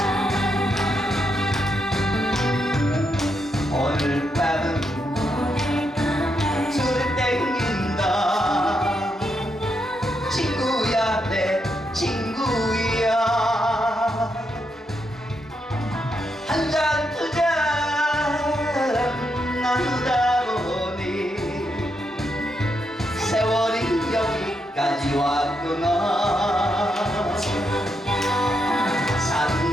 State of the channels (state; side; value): normal; both; correlation 0.81